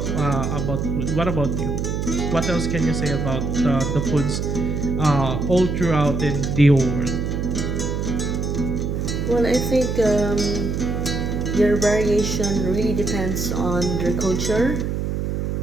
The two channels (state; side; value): noise; right; hum, 1 dB below the sound